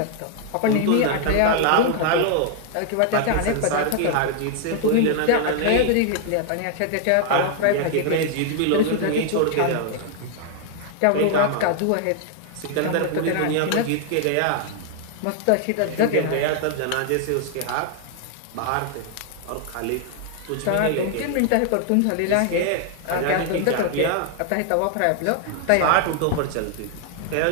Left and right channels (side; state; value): both; different; correlation 0.00